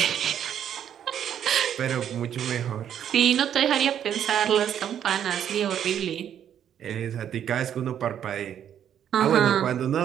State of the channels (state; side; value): quieter; left; 9.6 dB